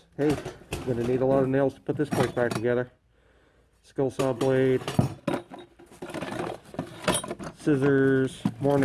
Hey, I'm gonna need a lot of nails to put this place back together. Skill saw blade, scissors, more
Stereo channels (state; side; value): identical; both; correlation 1.00